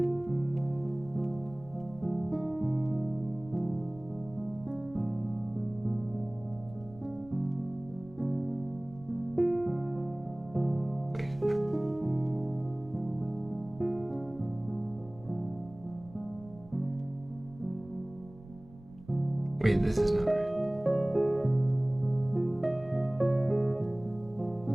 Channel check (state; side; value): noise; right; rumble, 21 dB below the sound